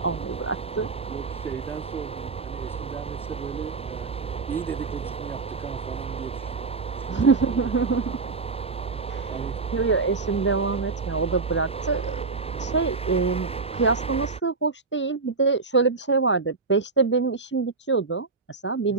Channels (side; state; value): left; quieter; 4.3 dB